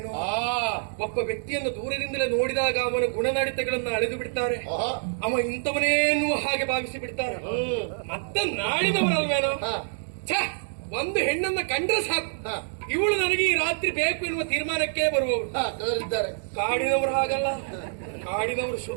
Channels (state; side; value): silent; left; digital silence